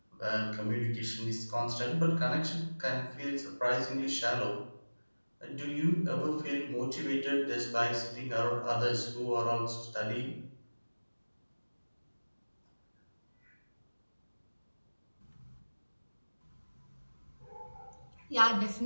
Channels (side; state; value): both; inverted; correlation -1.00